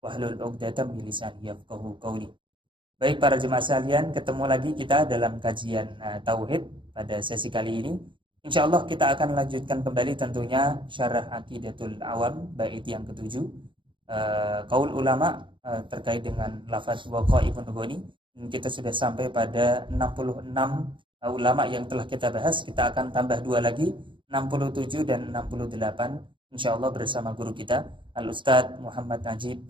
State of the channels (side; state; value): left; late; 0.24 ms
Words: 'uqdatam min lisani yafqahu qawli. Baik para jemaah sekalian, ketemu lagi kita dalam kajian tauhid pada sesi kali ini. Insya Allah kita akan lanjutkan kembali tentunya syarah Aqidatul Awam bait yang ketujuh, qaul ulama terkait dengan lafaz waqa'imun ghani. Kita sudah sampai pada 66 ulama yang telah kita bahas. Kita akan tambah 2 lagi, 67 dan 68 insya Allah bersama guru kita Al-Ustadz Muhammad Najib